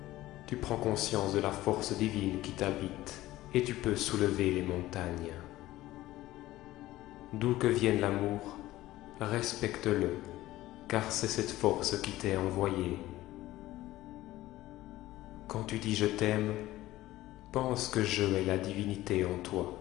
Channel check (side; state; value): right; quieter; 16.3 dB